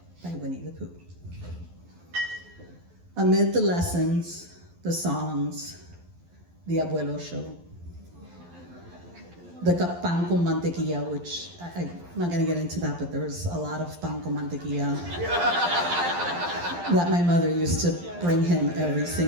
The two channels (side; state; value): left; late; 12 ms